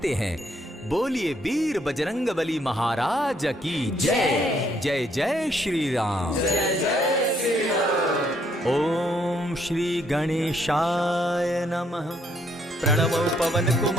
हैं। बोलिए वीर बजरंगबली महाराज की जय। जय जय श्री राम। जय जय श्री राम। ओम श्री गणेशाय नमः। प्रणवो पवन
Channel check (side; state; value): both; normal; correlation 0.70